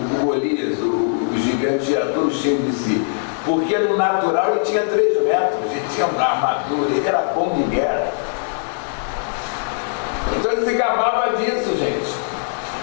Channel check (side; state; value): right; silent; digital silence